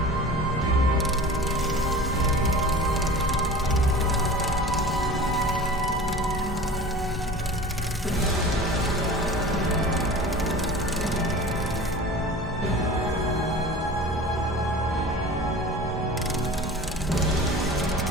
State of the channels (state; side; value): normal; both; correlation 0.38